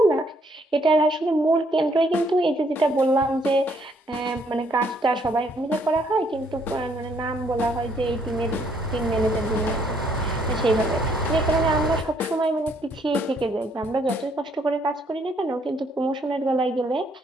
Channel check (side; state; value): both; normal; correlation 0.68